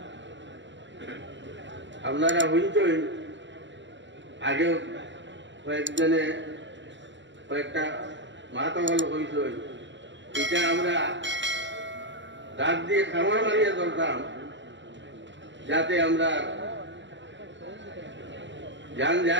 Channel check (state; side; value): late; left; 0.53 ms